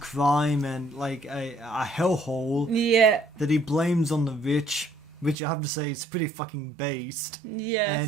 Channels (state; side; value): drops out; left; at 5.4 s